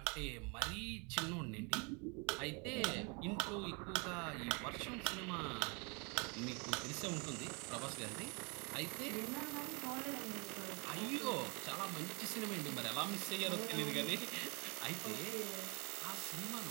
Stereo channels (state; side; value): quieter; left; 32.1 dB